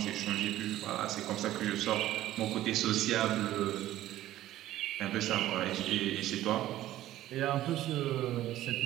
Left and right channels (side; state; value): left; quieter; 14.2 dB